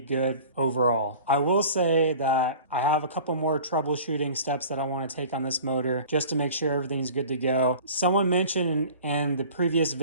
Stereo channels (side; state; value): both; inverted; correlation -0.43